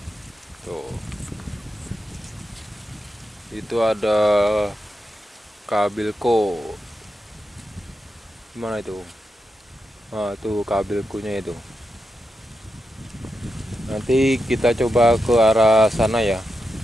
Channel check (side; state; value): both; normal; correlation 0.87